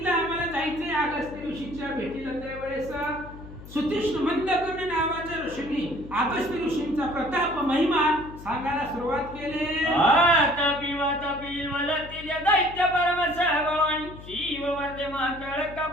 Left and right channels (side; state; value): left; noise; hum, 16 dB below the sound